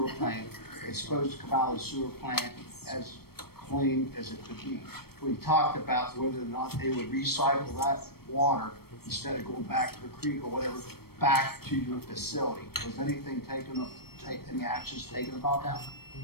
plant, it's supposed to come out of the sewer plant as clean as it could be. We talked about whether or not they would recycle that water instead of going back to the creek or whatever, back to your facility. Was anything taken, any actions taken about that?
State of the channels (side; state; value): right; late; 0.95 ms